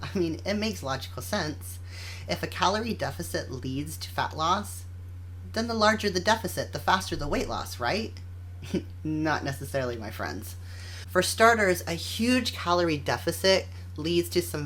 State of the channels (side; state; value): both; identical; correlation 1.00